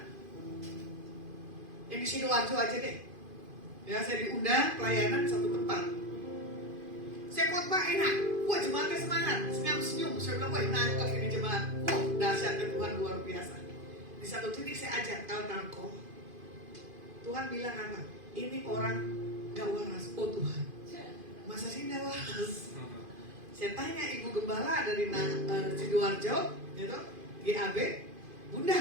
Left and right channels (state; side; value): late; left; 2.5 ms